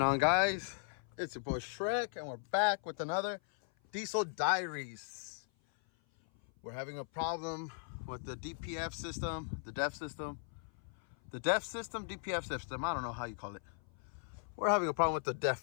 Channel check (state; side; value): silent; right; 53 dB below the other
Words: on, guys? It's your boy Shrek, and we're back with another diesel diaries. We're having a problem with the DPF system, the DEF system, DPF system. I don't know how you call it. We're having a problem with the